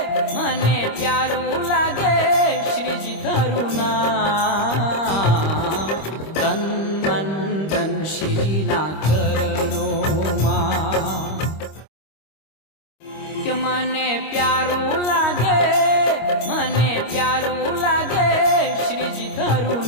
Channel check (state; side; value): late; right; 25 ms